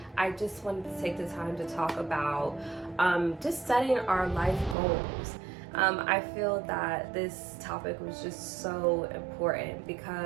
I just wanted to take the time to talk about just setting our life goals. I feel that this topic was just so important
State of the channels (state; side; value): drops out; left; at 4.8 s